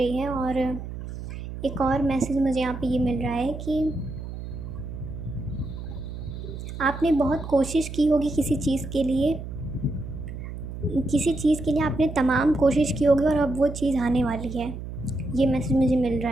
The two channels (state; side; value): noise; right; hum, 9 dB below the sound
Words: है, और एक और मैसेज मुझे यहाँ पे ये मिल रहा है कि आपने बहुत कोशिश की होगी किसी चीज़ के लिए आपने तमाम कोशिश की होगी, और अब वो चीज़ आने वाली है। ये मैसेज मुझे मिल रहा